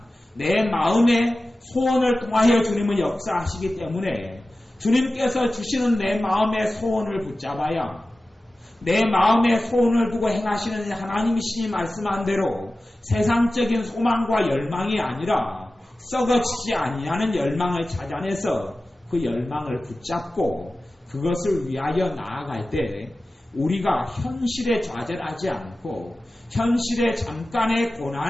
내 마음의 소원을 통하여 주님은 역사하시기 때문에 주님께서 주시는 내 마음의 소원을 붙잡아야 내 마음의 소원을 두고 행하시는 하나님이시니 말씀한 대로 세상적인 소망과 열망이 아니라 썩어지지 아니하는 열망을 찾아내서 그 열망을 붙잡고 그것을 위하여 나아갈 때 우리가 현실에 좌절하지 않고 현실의 잠깐의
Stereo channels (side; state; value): both; normal; correlation 0.95